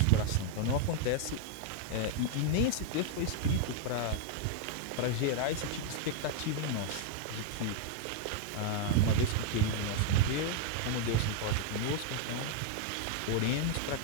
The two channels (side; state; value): both; different; correlation 0.00